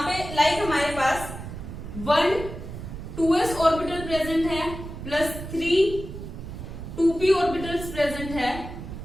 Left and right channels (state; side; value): noise; right; rumble, 10 dB below the sound